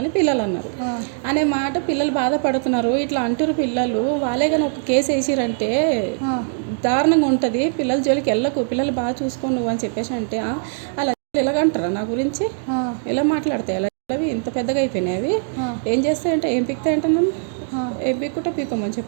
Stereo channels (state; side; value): silent; left; digital silence